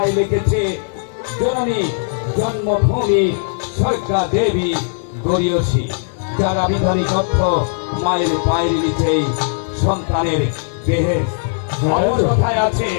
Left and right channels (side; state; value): right; silent; digital silence